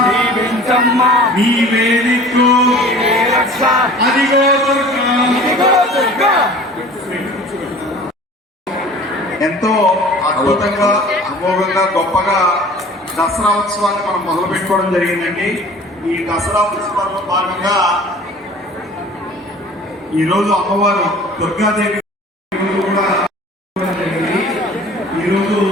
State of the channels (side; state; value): both; normal; correlation 0.45